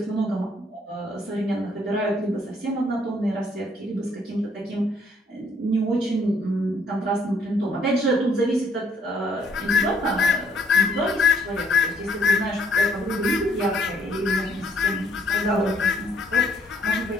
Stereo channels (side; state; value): both; normal; correlation 0.66